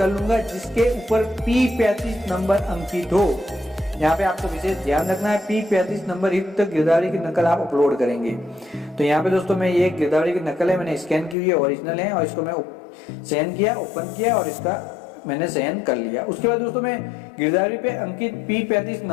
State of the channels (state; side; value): drops out; right; at 11.4 s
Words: लूंगा, जिसके ऊपर P35 नंबर अंकित हो। यहाँ पे आपको विशेष ध्यान रखना है, P35 नंबर युक्त गिरदावरी की नकल आप अपलोड करेंगे। तो यहाँ पे दोस्तों मैं ये गिरदावरी की नकल है, मैंने स्कैन की हुई है, ओरिजिनल है, और इसको मैं सहन किया, ओपन किया और इसका मैंने सहन कर लिया। उसके बाद दोस्तों मैं गिरदावरी पे अंकित P35